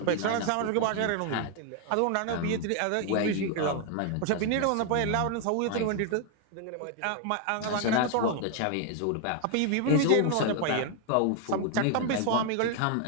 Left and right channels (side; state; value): both; different; correlation 0.00